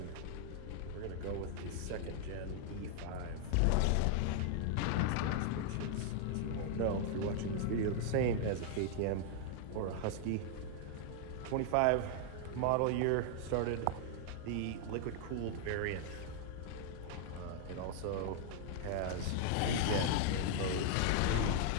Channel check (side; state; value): both; different; correlation 0.00